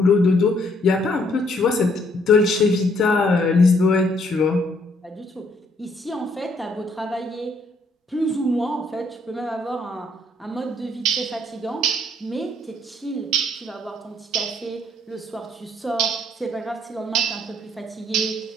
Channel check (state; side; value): normal; both; correlation 0.68